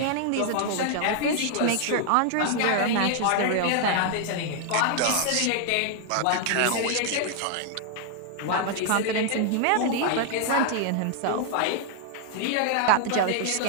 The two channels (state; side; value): different; both; correlation 0.00